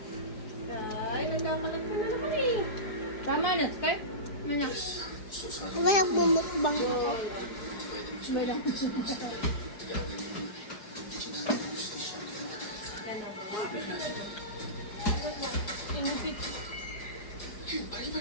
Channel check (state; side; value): late; right; 4.8 ms